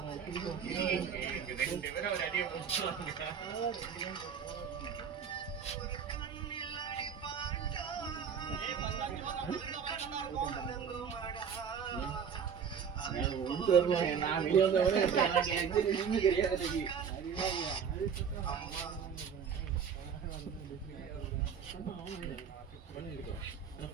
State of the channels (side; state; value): left; quieter; 7.1 dB